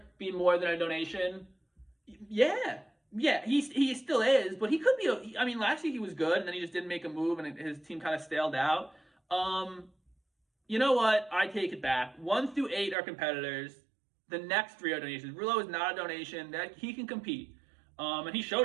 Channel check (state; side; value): drops out; left; at 13.0 s